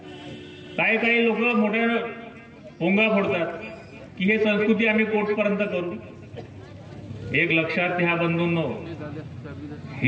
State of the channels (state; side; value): identical; both; correlation 1.00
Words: काही लोक मोठ्या पोंगा फोडतात की हे संस्कृती आम्ही कोर्टपर्यंत करू. एक लक्षात घ्या बंधूंनो,